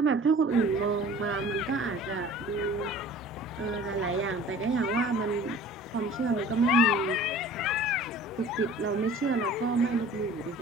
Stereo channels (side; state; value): both; normal; correlation 0.46